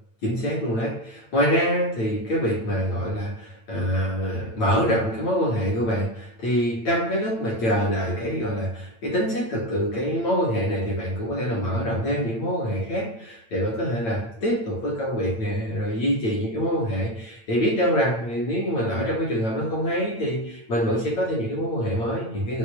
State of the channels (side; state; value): right; late; 8.9 ms